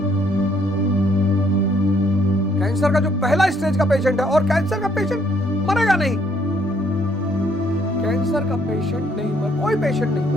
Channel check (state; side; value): normal; both; correlation 0.67